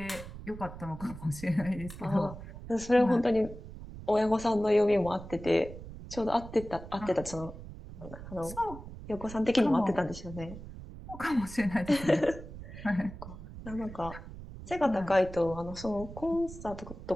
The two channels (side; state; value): right; noise; rumble, 13 dB below the sound